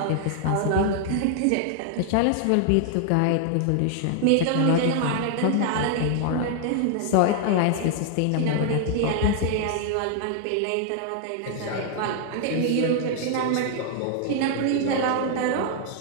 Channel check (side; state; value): both; different; correlation 0.00